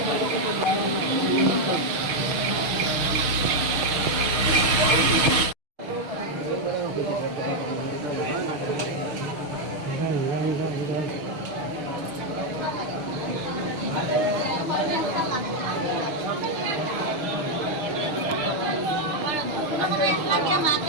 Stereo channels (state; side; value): late; left; 6.6 ms